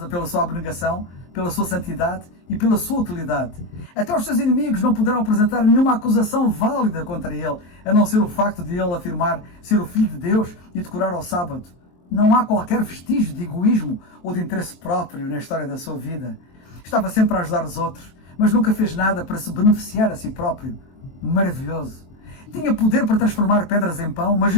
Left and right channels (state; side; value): late; right; 23 ms